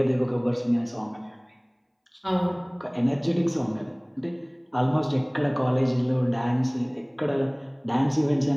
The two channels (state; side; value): identical; both; correlation 1.00